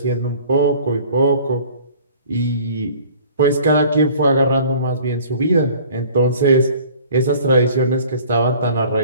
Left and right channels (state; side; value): inverted; both; correlation -0.50